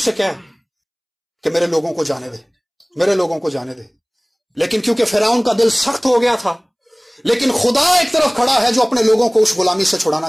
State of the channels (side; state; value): both; identical; correlation 1.00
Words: کہہ کہ میرے لوگوں کو جانے دے، میرے لوگوں کو جانے دے۔ لیکن کیونکہ فرعون کا دل سخت ہو گیا تھا، لیکن خدا ایک طرف کھڑا ہے جو اپنے لوگوں کو اس غلامی سے